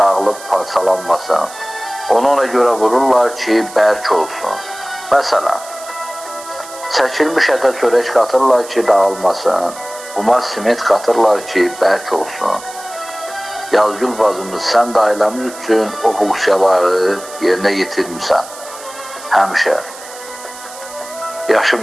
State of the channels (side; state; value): right; noise; hiss, 16 dB below the sound